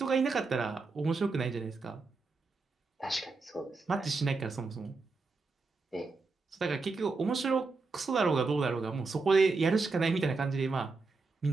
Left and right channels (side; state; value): left; quieter; 4.0 dB